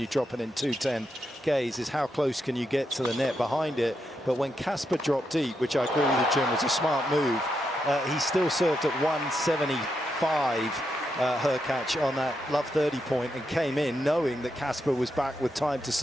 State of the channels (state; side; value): normal; both; correlation 0.83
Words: drop it in 210 gaze is how close can you get to the net behind it. But when Casper dropped deep, which I agree with you, Jim, was a smart move, he still served at 175 Hurkacz on that love 30 point and came in knowing that Casper was back with time to